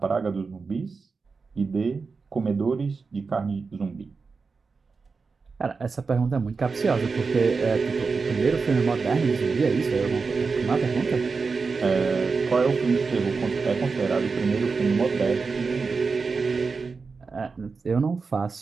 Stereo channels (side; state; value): left; quieter; 4.7 dB